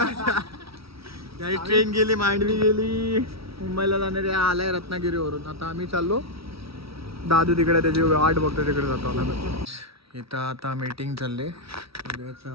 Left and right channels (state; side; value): late; left; 0.76 ms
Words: त्याची ट्रेन गेली, मांडवी गेली, मुंबईला जाणारी आलाय रत्नागिरीवरून. आता आम्ही चाललो, दादू तिकडे त्याची वाट बघतो, तिकडे जातो आला. इथं आता मीटिंग चालले.